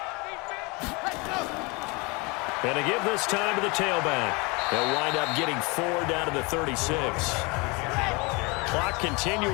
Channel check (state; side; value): quieter; right; 28.0 dB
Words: And to give this time to the tailback. They'll wind up getting 4 down to the 36. Clock